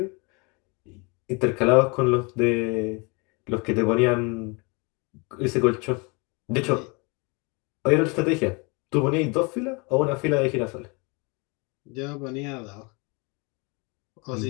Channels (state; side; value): quieter; right; 30.1 dB